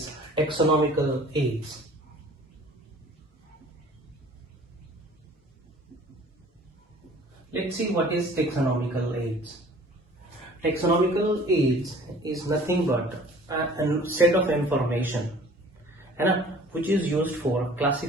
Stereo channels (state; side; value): normal; both; correlation 0.50